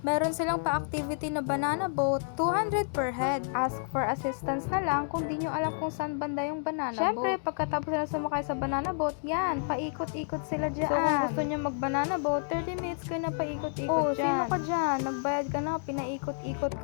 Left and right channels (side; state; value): right; silent; digital silence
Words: Meron silang pa-activity na banana boat, 200 per head. Ask for assistance na lang kung di nyo alam kung saan banda yung banana boat. Syempre, pagkatapos na sumakay sa banana boat, yan, paikot-ikot sila dyan. So, kung gusto nyo mag-banana boat, 30 minutes kayo na paikot-ikot dyan. Sino ka dyan? Nagbayad ka na, pinaikot-ikot